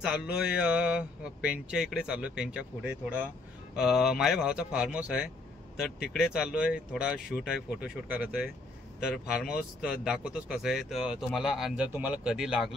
पेनच्या इकडे चाललोय। पेनच्या पुढे थोडा माझ्या भावाचा फार्म हाऊस आहे, तर तिकडे चाललोय। थोडा शूट आहे, फोटोशूट करायचं आहे। तर फार्म हाऊस दाखवतोच कसं आहे। तर तुम्हाला जर तुम्हाला कधी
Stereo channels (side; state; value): right; quieter; 3.1 dB